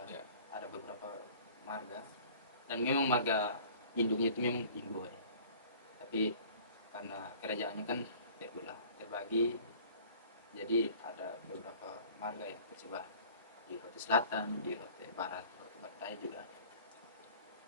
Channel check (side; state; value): both; inverted; correlation -0.48